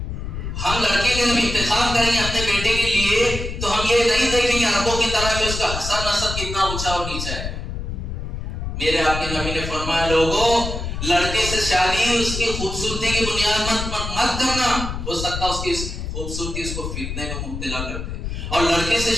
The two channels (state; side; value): noise; left; rumble, 5 dB below the sound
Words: ہم لڑکے کا جب انتخاب کریں گے اپنے بیٹے کے لیے تو ہم یہ نہیں دیکھیں گے عربوں کی طرح کہ اس کا حسب نسب کتنا اونچا اور نیچا ہے. میرے آپ کے نبی نے فرمایا لوگوں لڑکے سے شادی اس کی خوبصورتی کی بنیاد مت کرنا، ہو سکتا اس کی خوبصورتی اس کو فتنے میں مبتلا کر دے. اور لڑکے سے